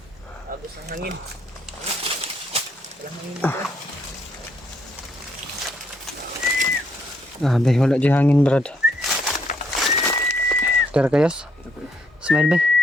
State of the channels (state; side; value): normal; both; correlation 0.72